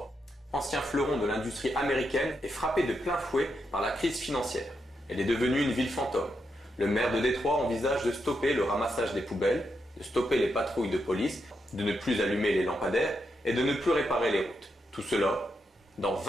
ancien fleuron de l'industrie américaine, est frappée de plein fouet par la crise financière. Elle est devenue une ville fantôme. Le maire de Détroit envisage de stopper le ramassage des poubelles, de stopper les patrouilles de police, de ne plus allumer les lampadaires et de ne plus réparer les routes. Tout cela dans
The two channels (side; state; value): both; normal; correlation 0.83